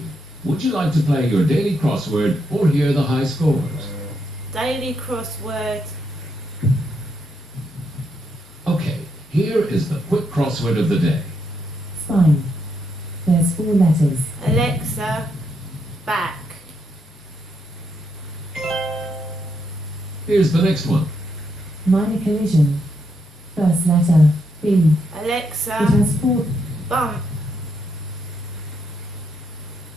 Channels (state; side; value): normal; both; correlation 0.79